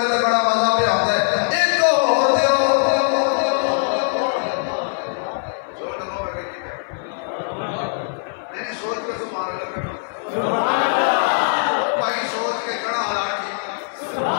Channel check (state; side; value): silent; right; 59 dB below the other